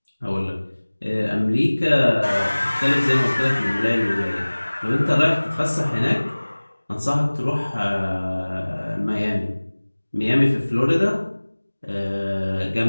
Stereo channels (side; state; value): both; inverted; correlation -1.00